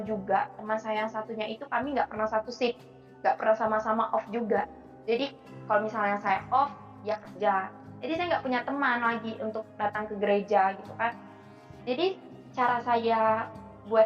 juga, teman saya yang satunya itu kami nggak pernah satu shift, nggak pernah sama-sama off juga. Jadi kalau misalnya saya off, dia kerja. Jadi saya nggak punya teman lagi untuk datang ke gereja gitu kan. Jadi cara saya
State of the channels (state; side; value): identical; both; correlation 1.00